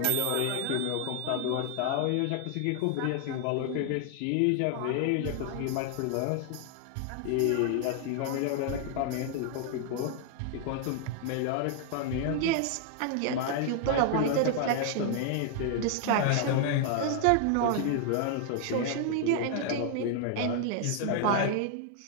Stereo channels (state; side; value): different; both; correlation 0.00